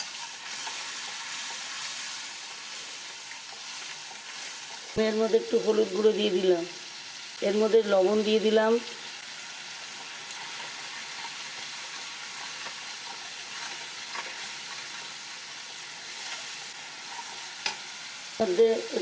এর মধ্যে একটু হলুদ গুঁড়ো দিয়ে দিলাম, এর মধ্যে লবণ দিয়ে দিলাম, মধ্যে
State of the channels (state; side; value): identical; both; correlation 1.00